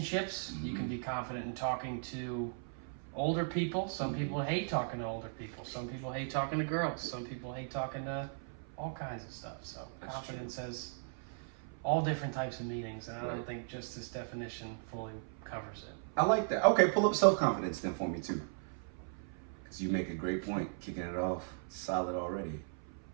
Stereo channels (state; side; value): silent; left; 53 dB below the other